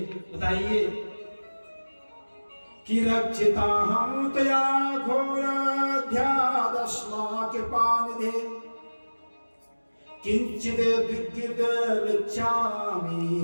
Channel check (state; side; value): inverted; both; correlation -1.00